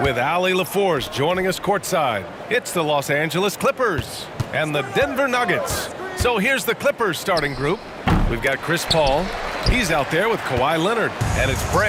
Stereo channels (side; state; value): both; identical; correlation 1.00